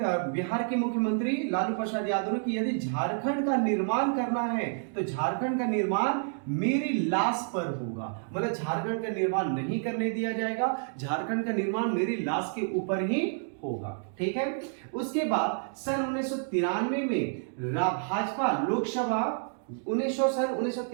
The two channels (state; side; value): silent; left; digital silence